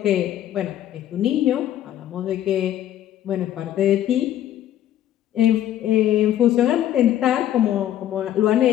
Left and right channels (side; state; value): right; quieter; 11.7 dB